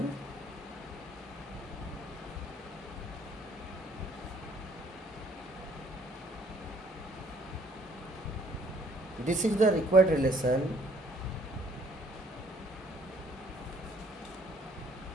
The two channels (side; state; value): both; normal; correlation 0.62